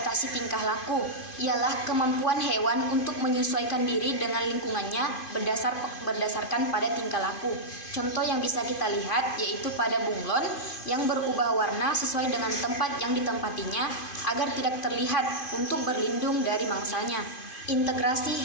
tingkah laku, ialah kemampuan hewan untuk menyesuaikan diri dengan lingkungannya berdasarkan pada tingkah laku. Contoh yang bisa kita lihat yaitu pada bunglon yang berubah warna sesuai dengan tempat yang ditempatinya agar tidak terlihat untuk berlindung dari mangsanya. Integrasi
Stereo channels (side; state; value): right; late; 2.5 ms